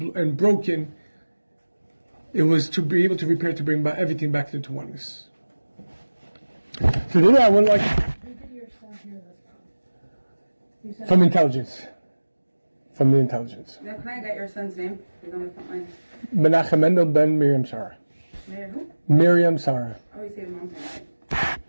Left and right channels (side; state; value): both; inverted; correlation -1.00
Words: broken. It was to be able to repair, to bring everything back into oneness. So then I would like from intelligence. From the intelligence. Now, can I get your son's name? He's on the front line. Menachem Mendel ben Miriam Sarah. Mayor who? Miriam Sarah. Oh, you say the mom's name.